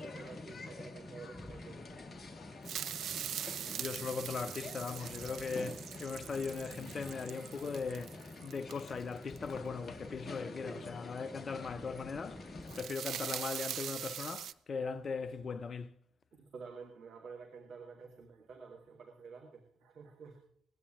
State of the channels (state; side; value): normal; both; correlation 0.78